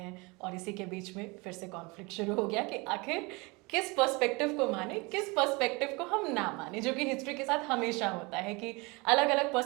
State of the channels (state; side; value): quieter; left; 26.7 dB